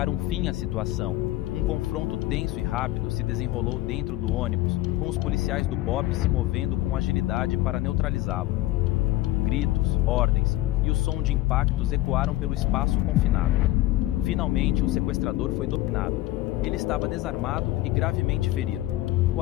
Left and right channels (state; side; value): quieter; right; 16.5 dB